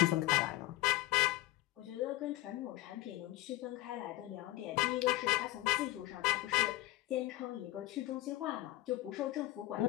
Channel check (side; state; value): right; quieter; 17.4 dB